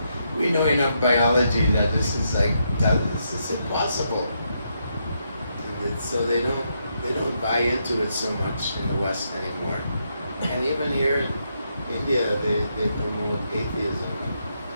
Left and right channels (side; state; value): both; inverted; correlation -0.79